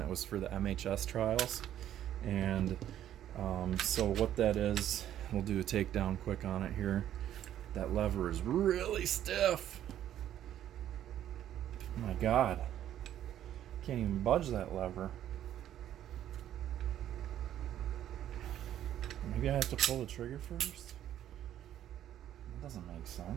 was for the MHS trials. And so what that is, we'll do a takedown quick on it here. That lever is really stiff. Oh my God. Can't even budge that lever. Maybe I have to pull the trigger first? That doesn't make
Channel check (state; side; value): quieter; left; 11.4 dB